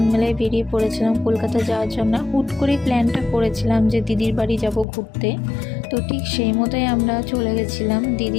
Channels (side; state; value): right; drops out; at 4.9 s